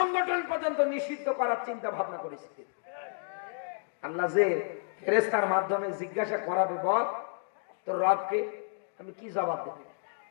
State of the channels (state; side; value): silent; right; digital silence